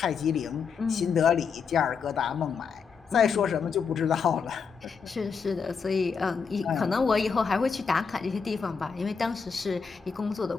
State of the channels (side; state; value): right; quieter; 5.8 dB